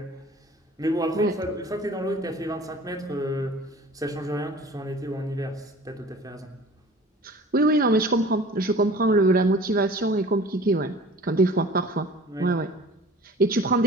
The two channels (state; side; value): normal; both; correlation 0.44